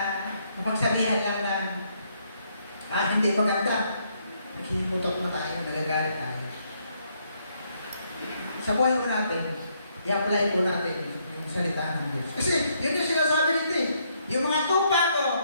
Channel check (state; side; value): inverted; both; correlation -0.72